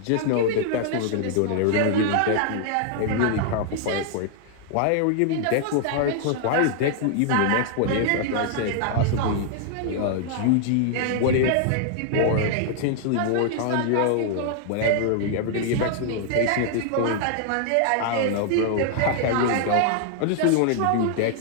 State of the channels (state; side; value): different; both; correlation 0.00